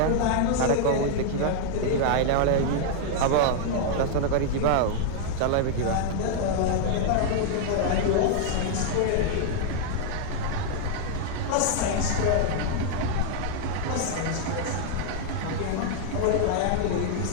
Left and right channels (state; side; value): different; both; correlation 0.00